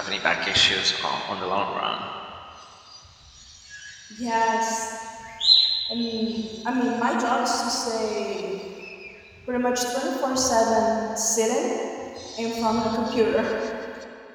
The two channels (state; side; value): identical; both; correlation 1.00